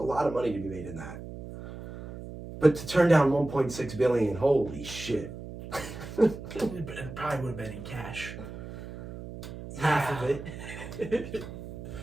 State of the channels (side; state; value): right; noise; hum, 11 dB below the sound